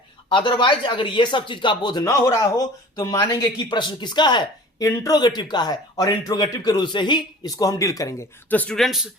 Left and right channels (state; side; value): normal; both; correlation 0.43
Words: अदरवाइज अगर ये सब चीज का बोध न हो रहा हो तो मानेंगे कि प्रश्न किसका है, इंट्रोगेटिव का है, और इंट्रोगेटिव के रूल से ही इसको हम डील करेंगे। तो स्टूडेंट्स